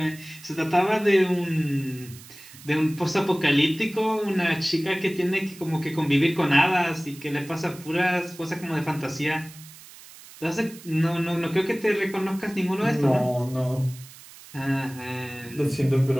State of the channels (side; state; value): right; noise; hiss, 19 dB below the sound